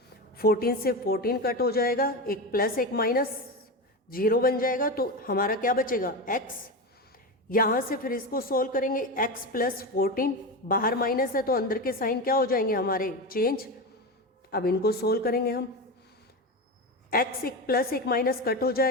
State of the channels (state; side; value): normal; both; correlation 0.20